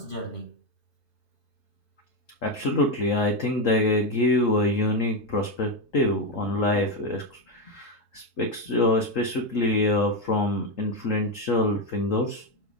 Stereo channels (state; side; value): normal; both; correlation 0.08